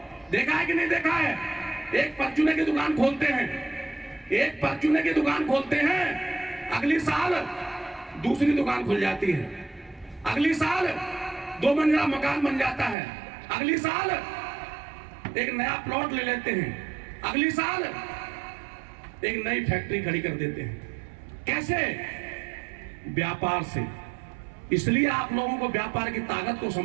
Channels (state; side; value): drops out; left; at 13.0 s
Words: देखा है कि नहीं देखा है। एक परचूने की दुकान खोलते हैं, एक परचूने की दुकान खोलते हैं, अगली साल दूसरी दुकान खुल जाती है, अगली साल 2 मंजिला मकान बन जाता है, अगली साल एक नया प्लॉट ले लेते हैं, अगली साल एक नई फैक्ट्री खड़ी कर देते हैं। कैसे? व्यापार से। इसलिए आप लोगों को व्यापार की ताकत को